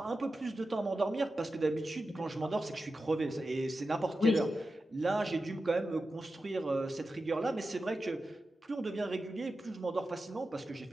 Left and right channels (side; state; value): both; normal; correlation 0.92